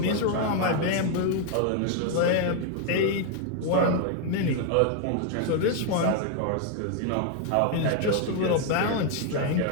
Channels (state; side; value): different; both; correlation 0.00